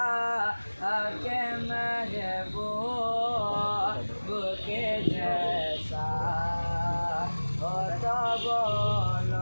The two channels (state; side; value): inverted; both; correlation -1.00